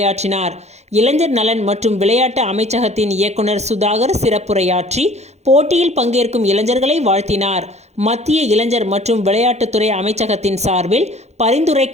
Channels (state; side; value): late; left; 0.32 ms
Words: இளைஞர் நலன் மற்றும் விளையாட்டு அமைச்சகத்தின் இயக்குனர் சுதாகர் சிறப்புரையாற்றி போட்டியில் பங்கேற்கும் இளைஞர்களை வாழ்த்தினார். மத்திய இளைஞர் மற்றும் விளையாட்டுத்துறை அமைச்சகத்தின் சார்பில்